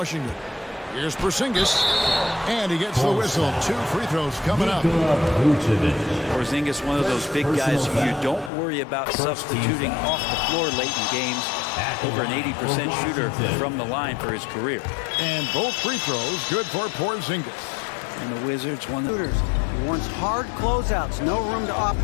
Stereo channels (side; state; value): right; drops out; at 8.5 s